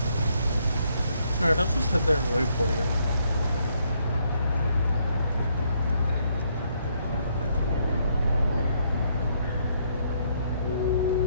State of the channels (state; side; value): inverted; both; correlation -0.71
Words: Alright, I'll just head there and wait for you.